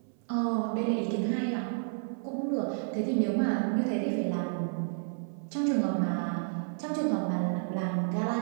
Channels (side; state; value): left; silent; 57 dB below the other